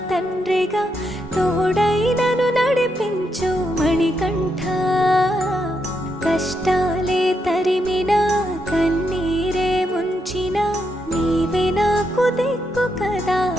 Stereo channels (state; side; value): normal; both; correlation 0.81